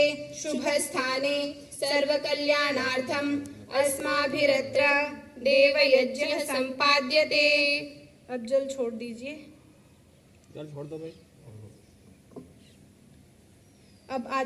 शुभ स्थाने सर्वकल्याणार्थम अस्माभिरत्र देवयज्ञ संपाद्यते। अब जल छोड़ दीजिए। जल छोड़ दो भाई। अब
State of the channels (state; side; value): identical; both; correlation 1.00